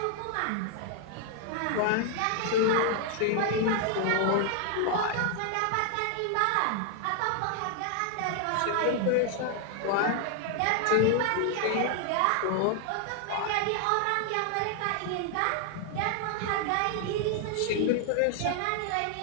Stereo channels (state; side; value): different; both; correlation 0.00